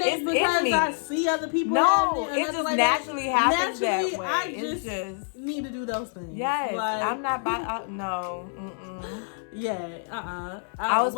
ain't because I see other people. No, it just like naturally happens that way. I just need to do those things. Yes, like, I'm not by. No. Yeah. I was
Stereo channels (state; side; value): silent; right; 60 dB below the other